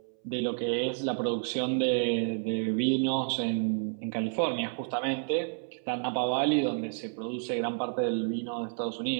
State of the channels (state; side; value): silent; left; 58 dB below the other